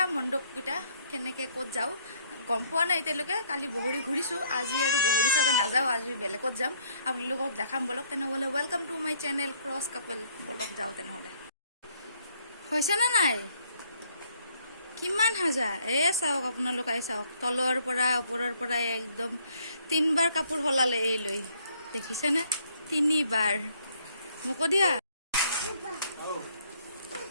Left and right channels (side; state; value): both; inverted; correlation -0.65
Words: মণ্ডপকেইটা কেনেকৈ ক'ত যাওঁ। গম পোৱা নাই এতিয়ালৈকে, কালি বগৰী ঘূৰিছোঁ, আজি আৰু বগৰী চাগে নাযাওঁ, আজি বেলেগত যাম। আপোনালোকক দেখাম বলক। তেনেহ'লে welcome to my channel cross couple. বলক যাওঁ তেনেহ'লে। হৈছেনে নাই? কিমান সাজা চাওক, আপোনালোকে চাওক, তলৰ পৰা ওপৰৰ পৰা একদম 3বাৰ কাপোৰ সলালে এই লৈ, দেখিছেনে? 3বাৰ। মোকো দিয়া।